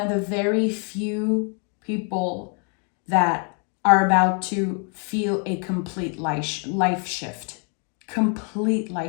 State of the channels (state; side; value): quieter; right; 39.5 dB